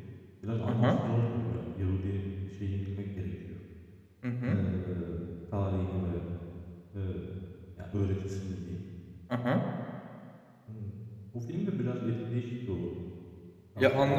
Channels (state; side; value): identical; both; correlation 1.00